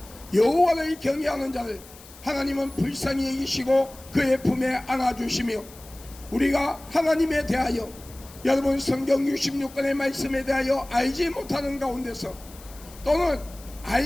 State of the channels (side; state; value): left; noise; hiss, 20 dB below the sound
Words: 여호와를 경외하는 자를 하나님은 불쌍히 여기시고 그의 품에 안아주시며 우리가 하나님에 대하여 여러분 성경 66권의 말씀에 대하여 알지 못하는 가운데서 또는